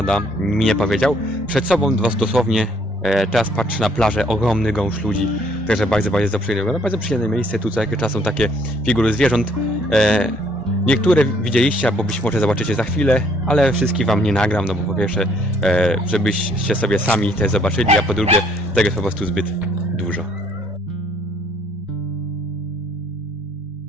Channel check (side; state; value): both; normal; correlation 0.64